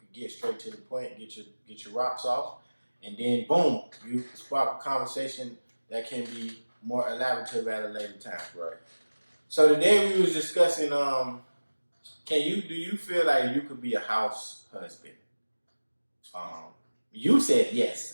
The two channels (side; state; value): both; inverted; correlation -1.00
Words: get straight to the point, get your rocks off, and then boom, you spark a conversation that can be more elaborative at a later time. Right. So today we was discussing, do you feel like you could be a house husband? You said